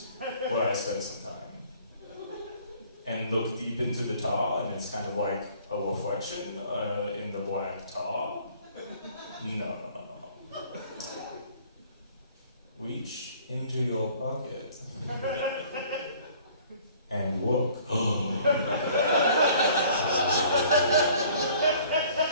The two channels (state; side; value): inverted; both; correlation -0.54